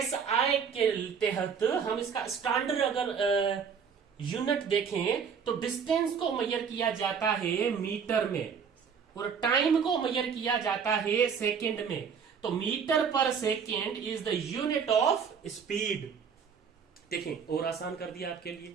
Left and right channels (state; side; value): quieter; left; 6.6 dB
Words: के तहत हम इसका स्टैंडर्ड अगर यूनिट देखें तो डिस्टेंस को मेजर किया जाता है मीटर में, और टाइम को मेजर किया जाता है सेकंड में। तो metre per second is the unit of speed. देखें, और आसान कर दिया आपके